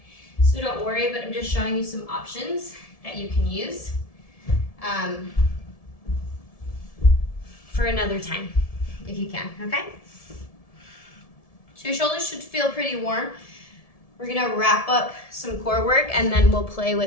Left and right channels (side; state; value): right; late; 1.7 ms